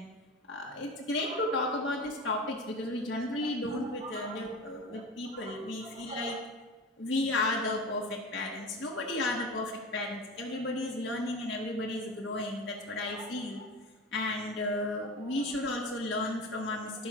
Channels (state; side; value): normal; both; correlation 0.30